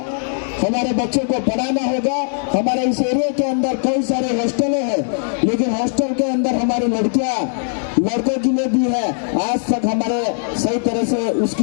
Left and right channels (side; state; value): right; silent; digital silence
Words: हमारे बच्चों को पढ़ाना होगा। हमारे इस एरिया के अंदर कई सारे हॉस्टलें हैं, लेकिन हॉस्टल के अंदर हमारी लड़कों के लिए भी है, आज तक हमारे सही तरह से